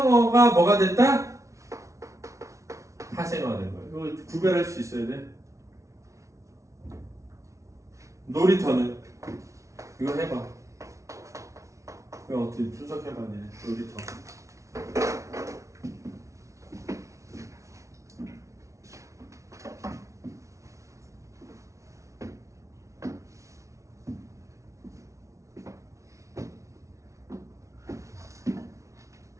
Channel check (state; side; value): late; left; 0.14 ms